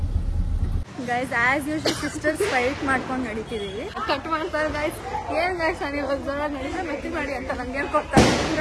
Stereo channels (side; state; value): both; identical; correlation 1.00